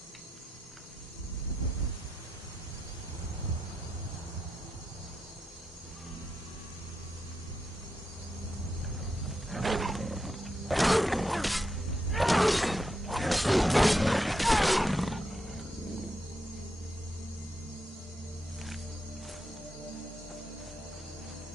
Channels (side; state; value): both; normal; correlation 0.85